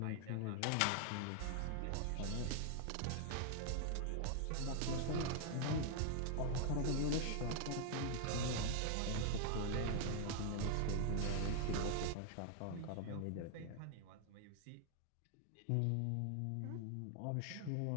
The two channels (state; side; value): different; both; correlation 0.00